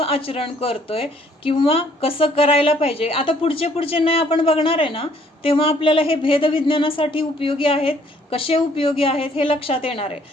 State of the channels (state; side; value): normal; both; correlation 0.63